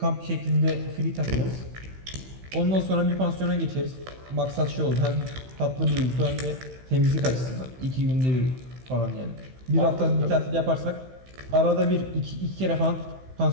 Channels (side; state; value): left; late; 15 ms